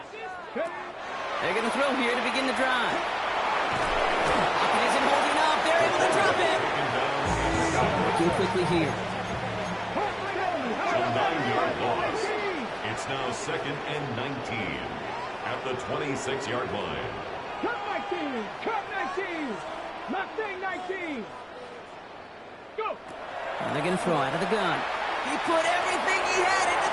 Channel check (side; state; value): both; identical; correlation 1.00